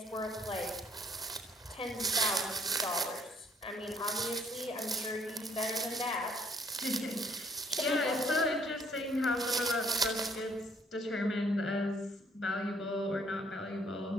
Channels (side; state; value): both; normal; correlation 0.65